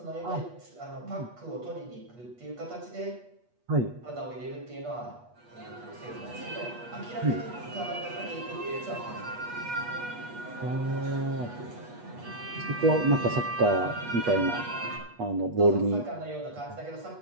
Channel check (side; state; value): left; late; 8.3 ms